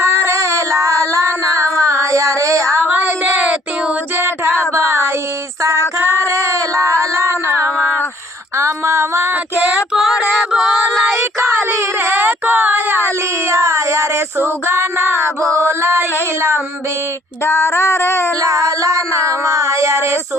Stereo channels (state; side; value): normal; both; correlation 0.61